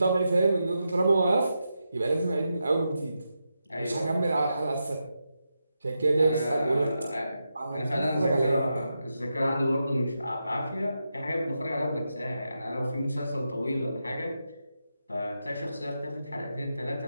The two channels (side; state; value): both; inverted; correlation -0.87